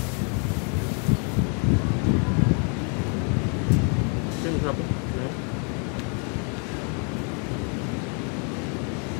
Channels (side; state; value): right; quieter; 38.8 dB